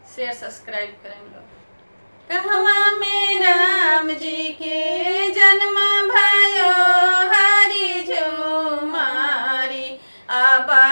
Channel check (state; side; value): inverted; both; correlation -1.00